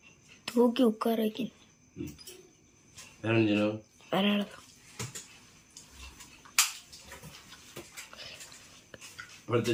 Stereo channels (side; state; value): both; identical; correlation 1.00